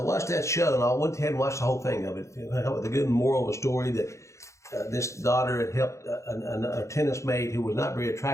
watched that show, and I went ahead and watched the whole thing of it, with a good moral of the story that this daughter had helped a tennis mate who was not very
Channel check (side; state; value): right; late; 0.14 ms